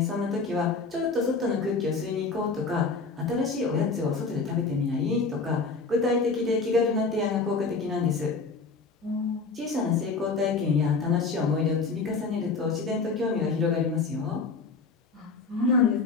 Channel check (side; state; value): right; quieter; 4.3 dB